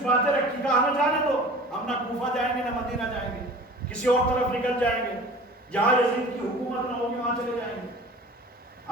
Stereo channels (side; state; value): both; normal; correlation 0.42